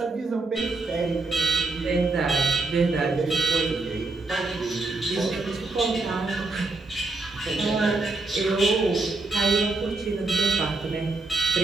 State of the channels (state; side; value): quieter; left; 3.4 dB